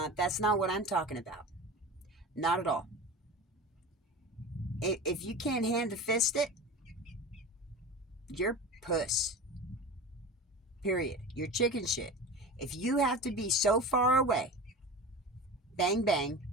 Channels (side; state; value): both; normal; correlation 0.32